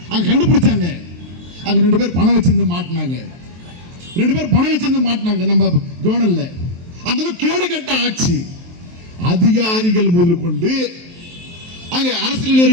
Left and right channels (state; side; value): late; left; 23 ms